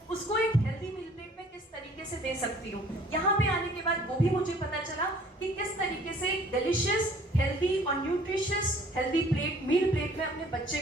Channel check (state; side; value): normal; both; correlation 0.55